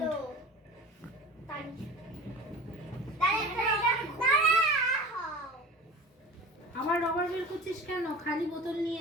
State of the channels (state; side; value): normal; both; correlation 0.37